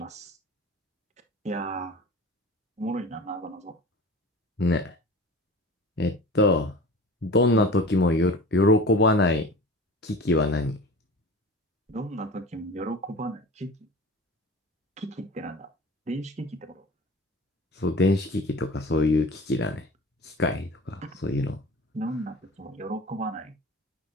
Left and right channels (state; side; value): normal; both; correlation 0.38